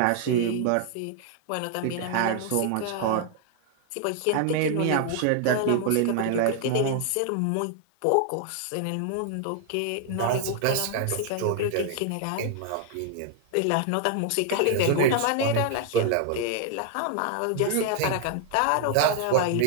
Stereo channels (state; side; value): different; both; correlation 0.00